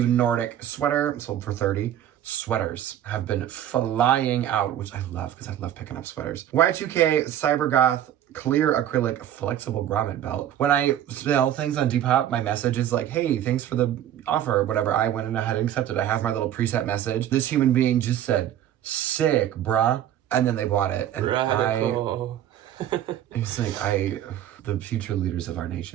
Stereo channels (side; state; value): left; quieter; 11.3 dB